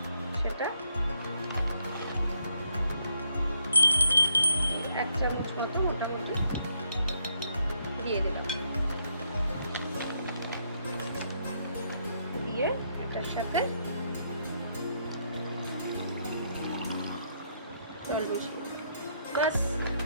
সেটা 1 চামচ মতো মোটামুটি দিয়ে দিলাম। দিয়ে এটার সাথে জল মিশিয়ে বাস,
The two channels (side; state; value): both; inverted; correlation -0.76